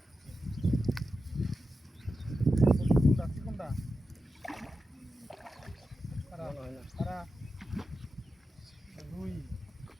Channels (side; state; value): both; normal; correlation 0.90